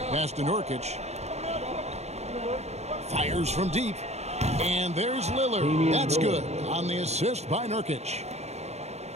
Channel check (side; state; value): left; late; 0.31 ms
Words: Pass to Nurkic. Fires from deep. And there's Lillard. That's good on the assist by Nurkic.